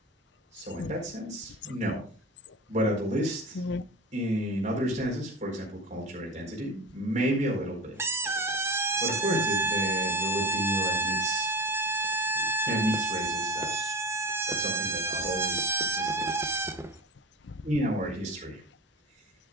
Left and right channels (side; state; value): both; normal; correlation 0.32